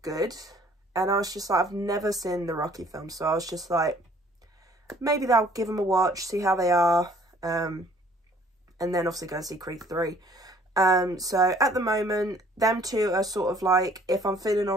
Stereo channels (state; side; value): normal; both; correlation 0.57